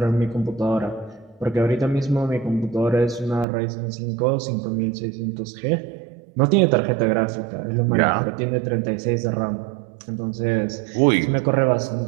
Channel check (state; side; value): drops out; left; at 3.5 s